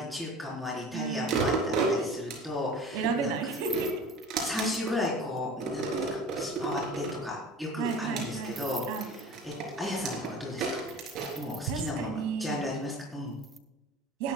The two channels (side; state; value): both; normal; correlation 0.39